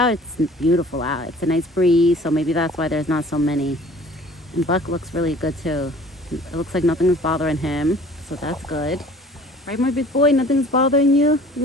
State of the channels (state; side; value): normal; both; correlation 0.49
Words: It's beautiful out. It's a nice breeze, so maybe that's why there's not so many. And Buck looks really good too. It looks like nothing's bothering him, so that's good. Right, my big boy? Nothing's bothering you?